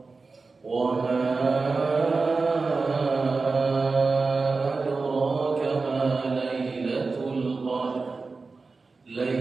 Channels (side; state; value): left; quieter; 4.1 dB